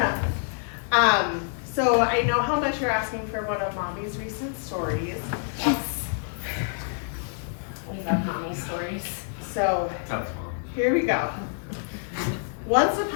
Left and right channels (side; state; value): right; silent; digital silence